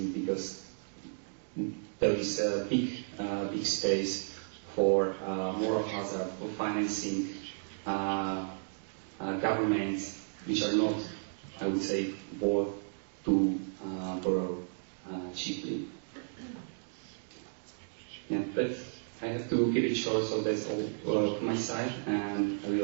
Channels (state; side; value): silent; left; digital silence